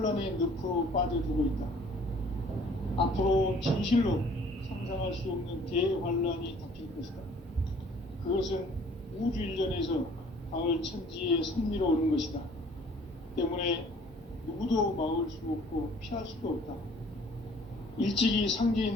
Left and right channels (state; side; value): normal; both; correlation 0.55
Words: 늪으로 빠져들고 있다. 앞으로 진실로 상상할 수 없는 대환란이 닥칠 것이다. 그것은 우주 일전에서 가을 천지에 섭리로 오는 것이다. 때문에 누구도 막을 수 없고 피할 수도 없다. 일찍이